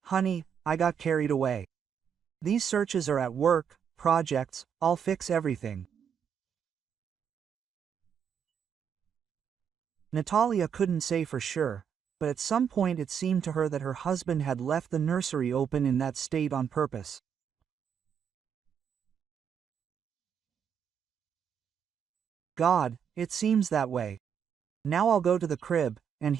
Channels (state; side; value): quieter; left; 7.7 dB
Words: honey, I got carried away. These searches are at work, projects, I'll fix everything." Natalia couldn't say for sure, but at some point it seemed to her that her husband had left the nursery open in that state on purpose. God, it seems that way. Now I'll go to the crib, and